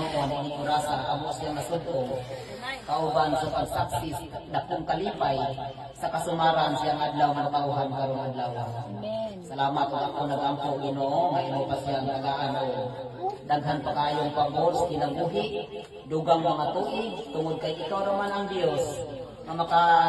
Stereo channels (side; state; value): both; identical; correlation 1.00